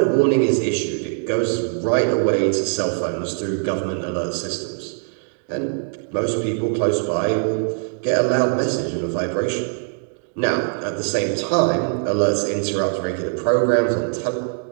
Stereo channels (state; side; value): silent; left; digital silence